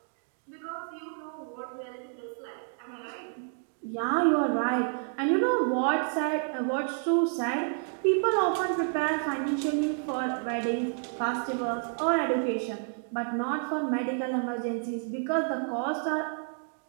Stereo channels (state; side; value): silent; left; 58 dB below the other